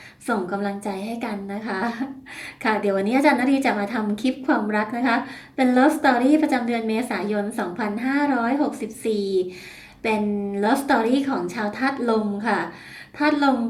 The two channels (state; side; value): identical; both; correlation 1.00